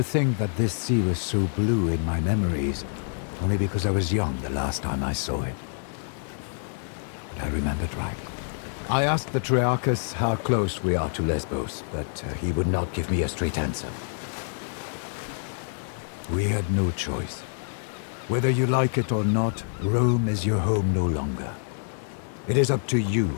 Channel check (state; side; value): silent; right; 60 dB below the other